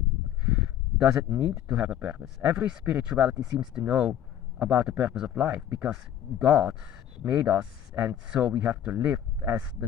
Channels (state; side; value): quieter; right; 10.5 dB